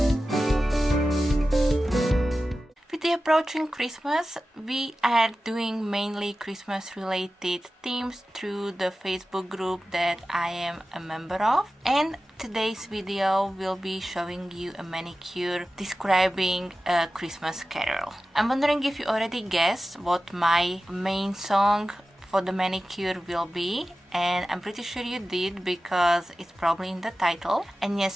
Approaching Christmas, we are doing mainly Christmas related themes through the Facebook group that I am a member of, and today's video will be showing you a manicure describing a Christmas carol. I'm wondering if you already guessed what my main song for the manicure will be, and I'm pretty sure you did because it's probably in the title. And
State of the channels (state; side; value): normal; both; correlation 0.94